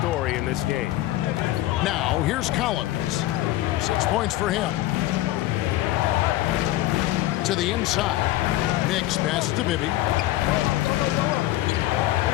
in this game. Now, here's Collins. 6 points for him. To the inside. Mix passes to Bibby.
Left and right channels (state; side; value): quieter; right; 15.9 dB